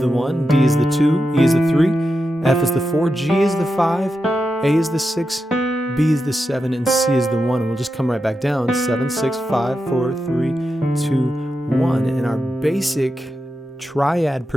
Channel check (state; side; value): normal; both; correlation 0.89